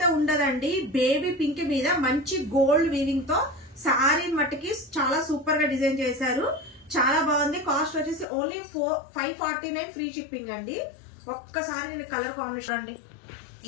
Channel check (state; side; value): drops out; right; at 8.2 s